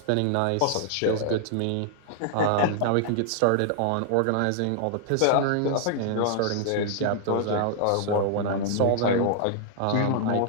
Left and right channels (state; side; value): different; both; correlation -0.01